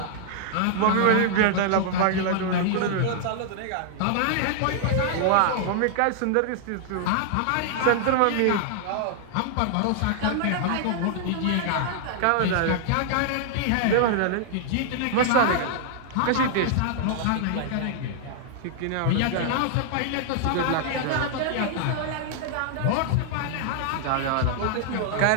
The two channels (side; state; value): both; different; correlation -0.01